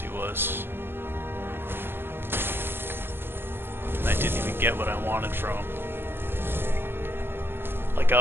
was. And I didn't even get what I wanted from him. Like,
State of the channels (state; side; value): late; left; 0.10 ms